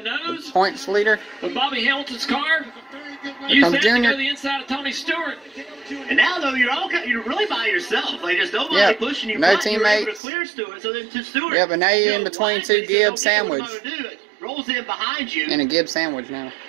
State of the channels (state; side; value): drops out; left; at 10.2 s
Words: the nose. Points leader. With Bobby Hamilton's car. Here Use comes that Junior. to go the inside of Tony Stewart. And now, though, you're really by yourself. Like, there's nobody Yep. pushing you. No but you're able to teammates. clear Stewart, so then to Stewart. Yeah, but now you're in between wisely 2 says, Gibbs "Okay, what am I sandwich. gonna do?" It rolls in behind you. And a Gibbs sandwich now.